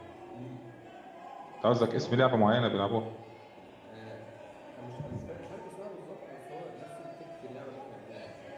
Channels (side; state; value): both; identical; correlation 1.00